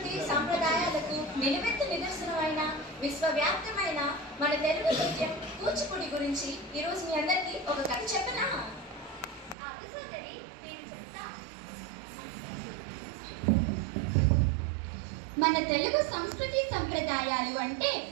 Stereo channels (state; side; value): drops out; left; at 9.6 s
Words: సాంప్రదాయాలకు నిలువెత్తు నిదర్శనమైన విశ్వవ్యాప్తమైన మన తెలుగు నృత్యం కూచిపూడి గురించి ఈరోజు మీ అందరికీ ఒక కథ చెప్పనా? మన తెలుగు సంస్కృతి సంప్రదాయాలు అంటే